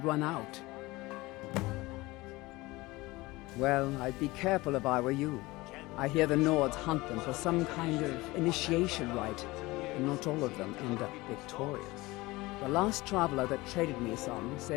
run out. Well, I'd be careful if I were you. I hear the Nords hunt them for some kind of initiation rite, and not all of them end up victorious. The last traveler that traded me some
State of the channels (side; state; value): right; quieter; 20.9 dB